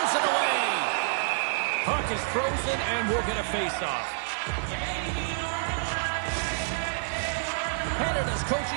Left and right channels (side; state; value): left; silent; digital silence